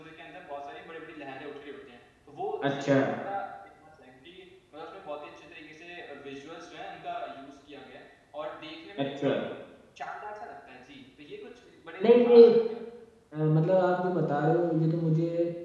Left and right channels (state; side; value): identical; both; correlation 1.00